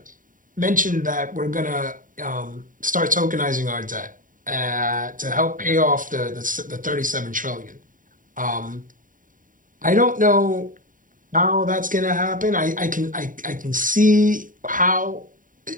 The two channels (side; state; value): left; late; 0.39 ms